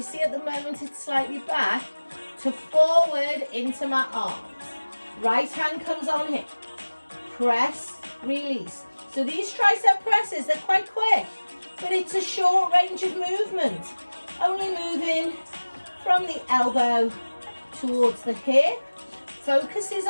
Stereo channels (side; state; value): both; inverted; correlation -1.00